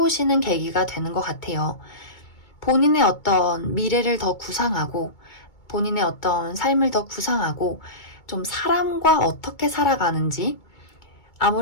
계기가 되는 것 같아요. 본인의 어떤 미래를 더 구상하고 본인의 어떤 삶을 더 구상하고 좀 사람과 어떻게 살아가는지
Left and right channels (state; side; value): late; right; 2.2 ms